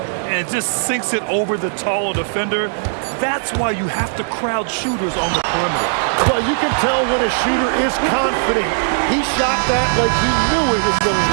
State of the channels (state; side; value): silent; left; digital silence